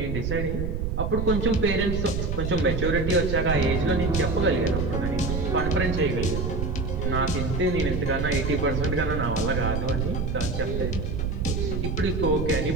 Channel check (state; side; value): noise; right; rumble, 1 dB below the sound